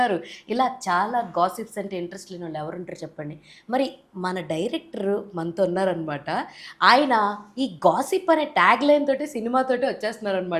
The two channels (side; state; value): both; identical; correlation 1.00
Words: ఇలా చాలా గాసిప్స్ అంటే ఇంట్రెస్ట్ లేని వాళ్ళు ఎవరు ఉంటారు చెప్పండి. మరి మన డైరెక్టర్ మనతో ఉన్నారనమాట. ఆయన ఈ గాసిప్ అనే ట్యాగ్ లైన్ తోటి సినిమాతోటి